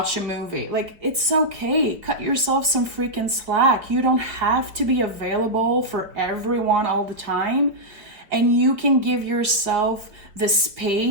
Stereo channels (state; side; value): late; left; 4.8 ms